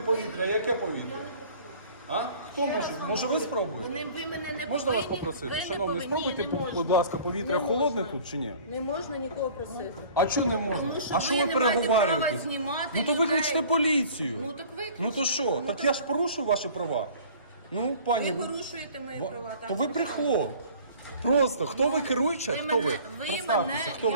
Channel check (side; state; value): both; inverted; correlation -0.48